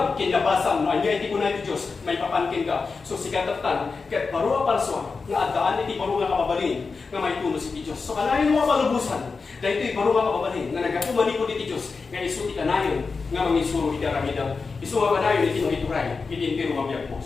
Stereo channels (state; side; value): quieter; right; 4.6 dB